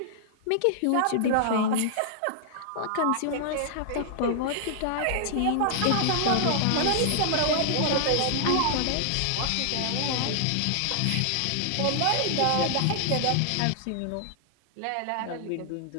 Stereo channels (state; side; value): different; both; correlation -0.01